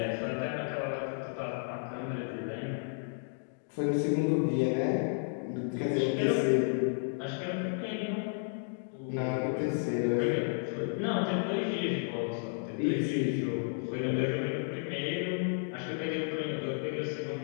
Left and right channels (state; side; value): silent; right; digital silence